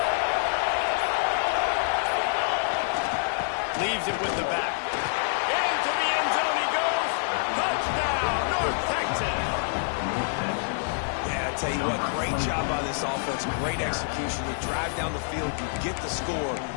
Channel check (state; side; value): silent; right; digital silence